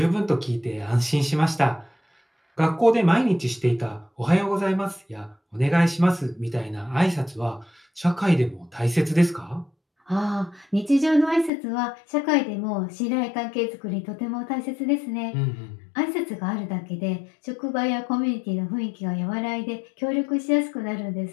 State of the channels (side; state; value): right; drops out; at 11.5 s